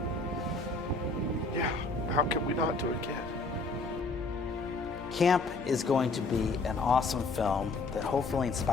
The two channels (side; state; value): right; quieter; 3.6 dB